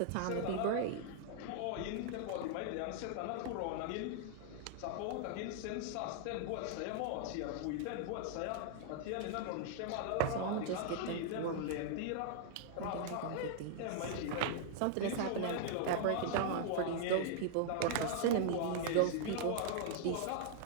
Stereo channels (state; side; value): different; both; correlation -0.01